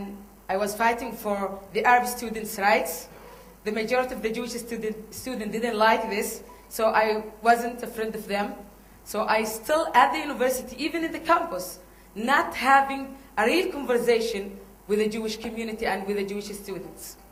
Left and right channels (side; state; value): both; identical; correlation 1.00